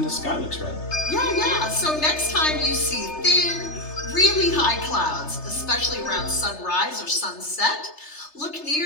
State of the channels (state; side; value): late; right; 3.3 ms